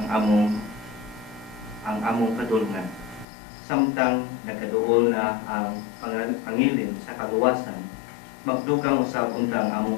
among kadulngan. Samtang nagkaduol na ang pangilin sa kaluwasan, magdugang usab untang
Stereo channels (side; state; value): right; drops out; at 3.2 s